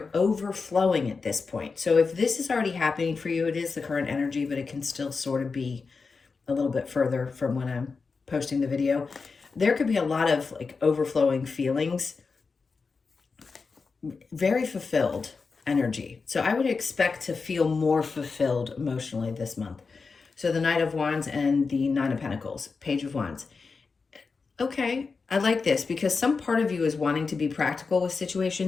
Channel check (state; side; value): quieter; right; 4.7 dB